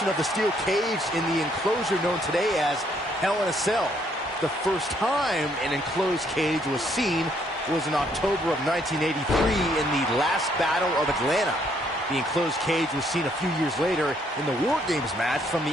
of the steel cage in the enclosure known today as Hell in a Cell. The first time an enclosed cage was seen was in October of 1983 in the last Battle of Atlanta. The enclosed cage was seen a few years later in the War Games match from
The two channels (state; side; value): normal; both; correlation 0.69